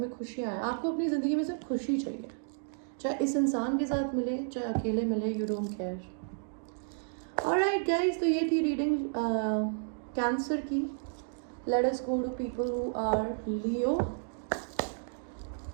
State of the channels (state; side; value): silent; left; digital silence